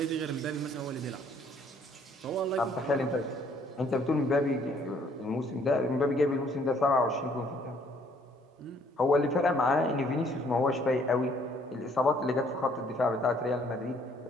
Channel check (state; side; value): normal; both; correlation 0.63